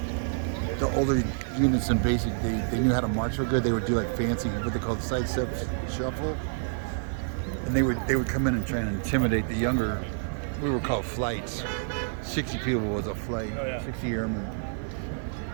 the older units in basic, they knew how to march real good. They would do like fancy, what they called side step shuffle. And they would come in and try and intimidate the younger, we were called flights. 60 people was a flight, 60 airmen.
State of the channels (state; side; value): silent; left; digital silence